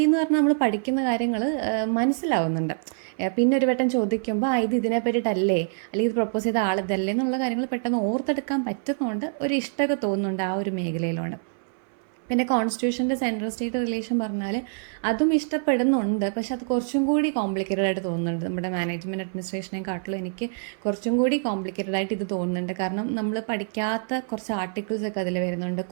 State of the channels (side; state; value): left; silent; 60 dB below the other